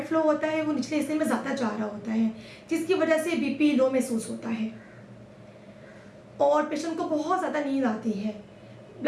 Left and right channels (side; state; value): both; identical; correlation 1.00